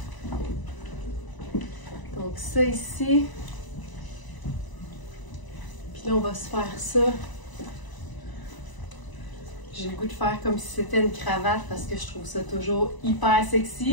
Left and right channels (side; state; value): right; late; 1.0 ms